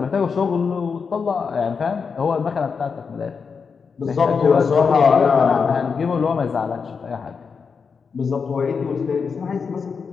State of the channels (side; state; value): right; quieter; 5.6 dB